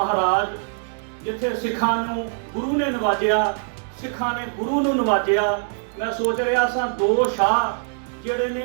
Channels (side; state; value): left; silent; digital silence